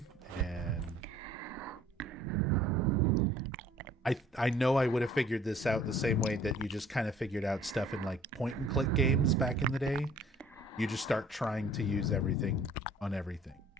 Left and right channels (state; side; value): normal; both; correlation 0.54